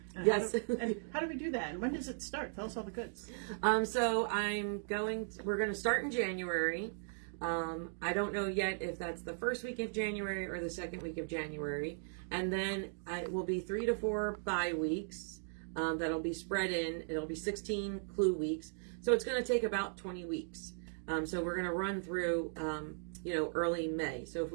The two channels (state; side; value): silent; left; digital silence